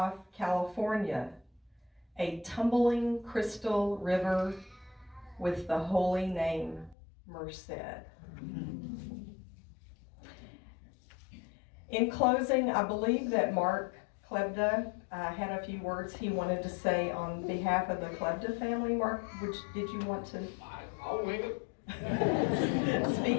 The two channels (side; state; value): right; drops out; at 7.0 s